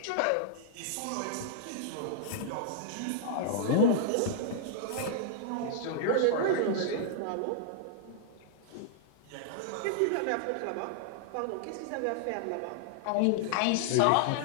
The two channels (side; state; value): both; different; correlation -0.01